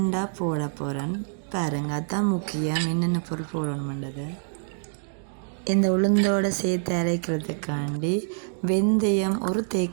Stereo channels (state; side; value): silent; left; digital silence